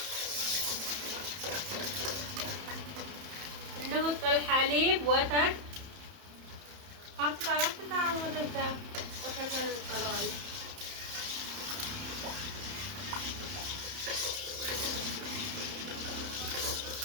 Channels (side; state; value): left; late; 31 ms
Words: نحط الحليب وتر قطع ودجا وتر القلوي